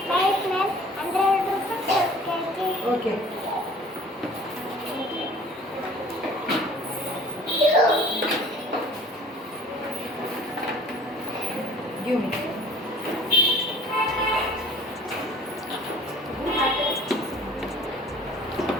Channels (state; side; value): normal; both; correlation 0.48